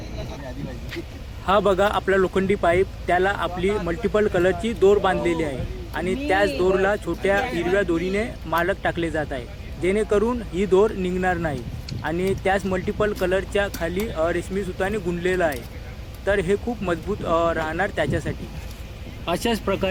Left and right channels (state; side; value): identical; both; correlation 1.00